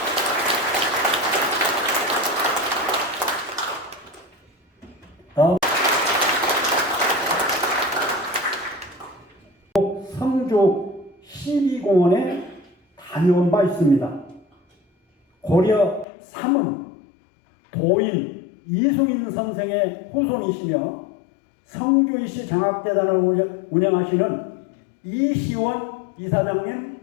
성주 12공원에 다녀온 바 있습니다. 고려 3은 도인 이승인 선생의 후손이시며 성주이시 장학재단을 운영하시는 이시원 이사장님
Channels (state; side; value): drops out; right; at 16.1 s